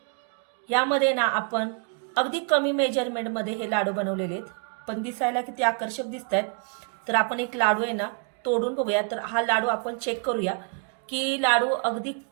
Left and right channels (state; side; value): quieter; left; 39.8 dB